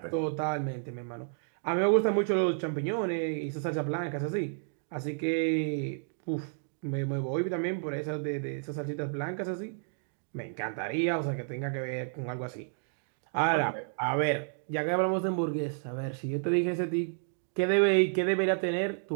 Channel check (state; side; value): silent; left; digital silence